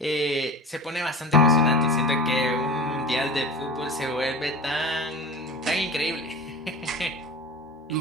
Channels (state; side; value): normal; both; correlation 0.32